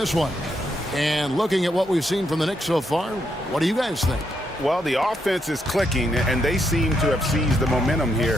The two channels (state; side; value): normal; both; correlation 0.78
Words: one. And looking at what we've seen from the Knicks so far, what do you guys think? Well, the offense is clicking, and they seem to have seized the momentum